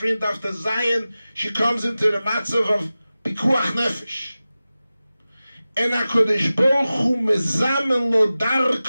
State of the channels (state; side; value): inverted; both; correlation -0.96